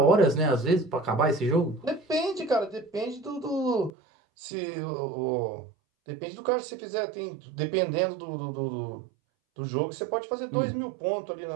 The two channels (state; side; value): drops out; left; at 3.9 s